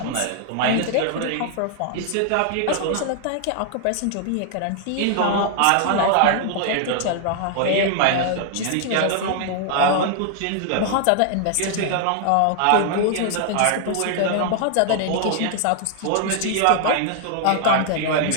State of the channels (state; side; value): different; both; correlation 0.00